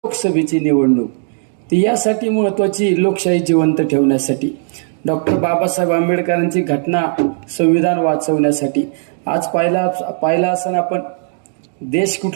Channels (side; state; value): left; silent; 69 dB below the other